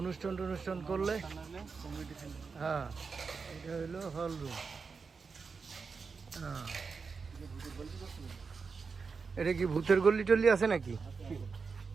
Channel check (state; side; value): quieter; left; 5.0 dB